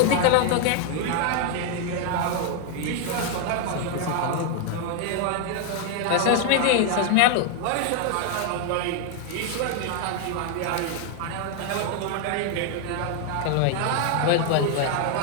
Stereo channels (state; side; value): different; both; correlation 0.00